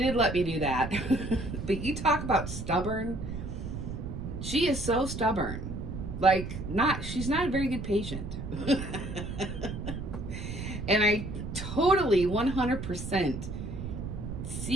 let me do that. But you talk about stubborn. She is so stubborn. Like, she's not a very good patient. And I totally 100%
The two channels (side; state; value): right; noise; rumble, 6 dB below the sound